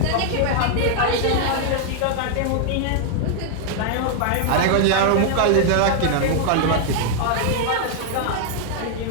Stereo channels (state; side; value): different; both; correlation 0.00